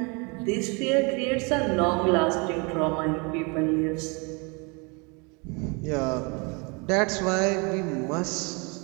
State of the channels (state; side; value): quieter; left; 30.9 dB